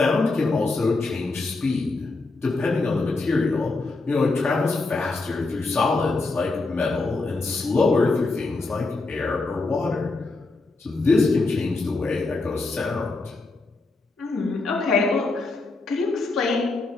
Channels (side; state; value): right; quieter; 3.5 dB